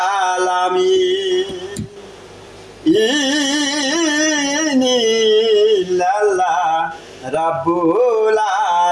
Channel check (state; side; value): identical; both; correlation 1.00